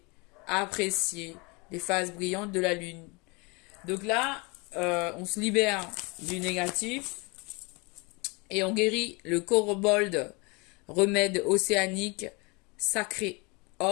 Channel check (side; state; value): right; quieter; 28.3 dB